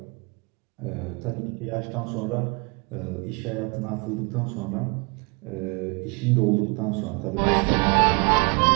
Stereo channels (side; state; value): left; quieter; 30.2 dB